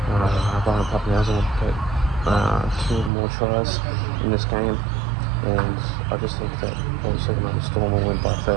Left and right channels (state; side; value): drops out; left; at 3.1 s